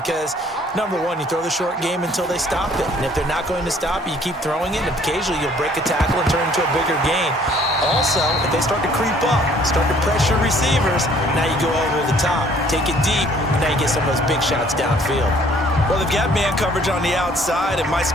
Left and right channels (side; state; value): both; normal; correlation 0.58